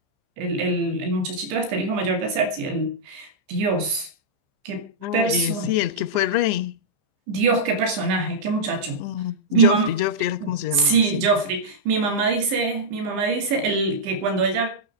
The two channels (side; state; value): left; late; 15 ms